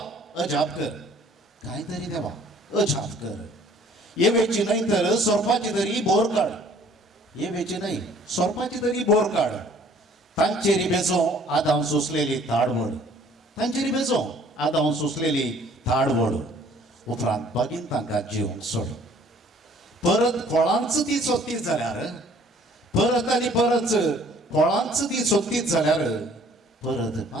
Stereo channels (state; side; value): normal; both; correlation 0.56